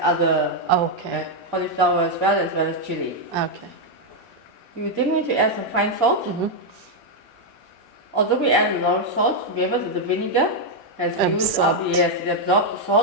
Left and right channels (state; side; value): normal; both; correlation 0.00